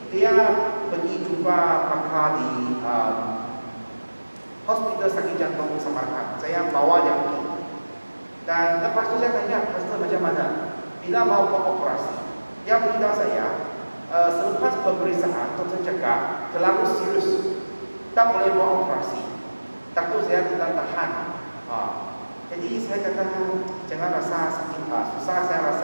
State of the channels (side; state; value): both; inverted; correlation -1.00